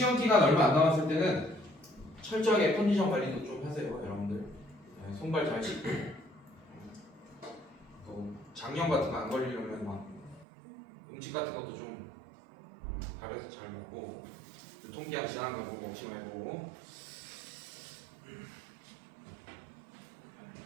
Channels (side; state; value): left; drops out; at 10.5 s